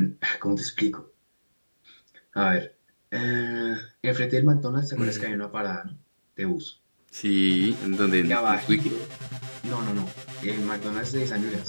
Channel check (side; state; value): both; inverted; correlation -1.00